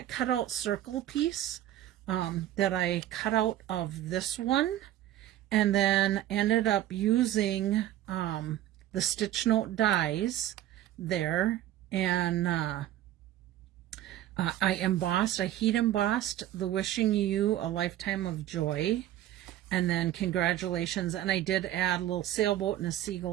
cutout circle piece that I cut out of this one, and then ended up using the stitch note dies there, and I heat embossed the Wishing You a Lifetime of Joy, and then Congratulations, and I did add a little sailboat and a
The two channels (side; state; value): left; quieter; 13.0 dB